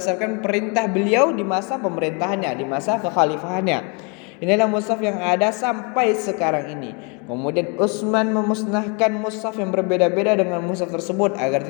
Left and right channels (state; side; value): quieter; right; 33.5 dB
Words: perintah beliau di masa pemerintahannya, di masa kekhalifahannya. Inilah mushaf yang ada sampai sekarang ini. Kemudian Utsman memusnahkan mushaf yang berbeda-beda dengan mushaf tersebut agar